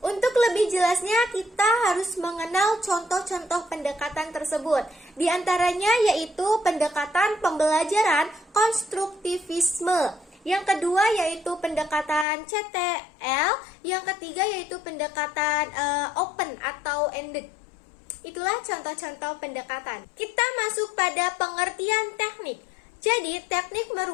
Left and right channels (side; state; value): right; drops out; at 12.2 s